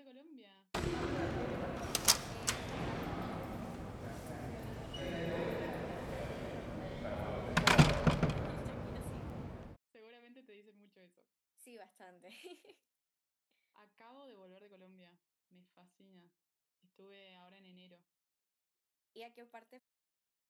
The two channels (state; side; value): identical; both; correlation 1.00